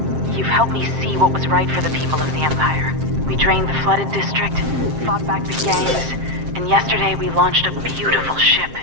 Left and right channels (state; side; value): late; left; 7.6 ms